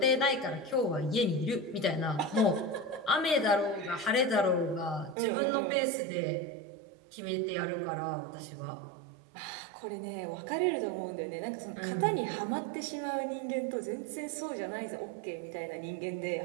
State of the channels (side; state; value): left; drops out; at 5.2 s